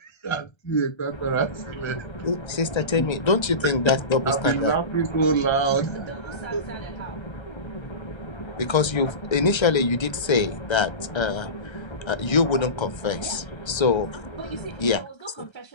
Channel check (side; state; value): right; late; 1.3 ms